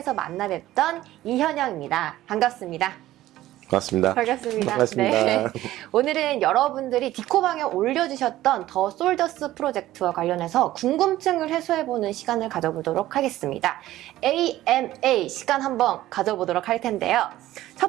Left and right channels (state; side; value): quieter; left; 15.0 dB